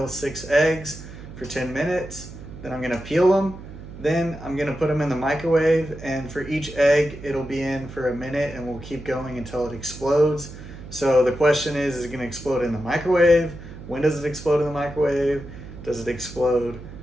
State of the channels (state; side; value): noise; right; hum, 14 dB below the sound